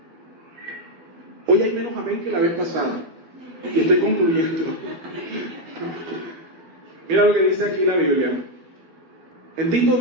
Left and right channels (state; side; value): late; left; 12 ms